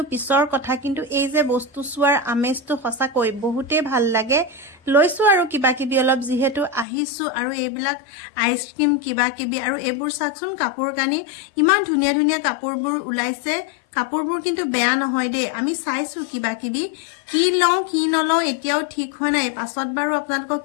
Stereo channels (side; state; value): right; drops out; at 6.9 s